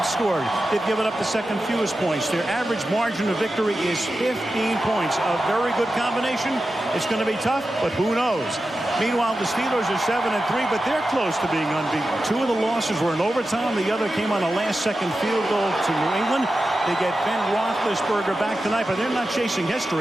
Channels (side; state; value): both; normal; correlation 0.92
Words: scored. They've given up the second fewest points. Their average margin of victory is 15 points. A very good combination. It's going to be tough, but who knows? Meanwhile, the Steelers are 7-3, but they're close to being unbeaten. Two of the losses were in overtime. The other came on a last-second field goal to New England. They get Ben Roethlisberger back tonight, but they're not chasing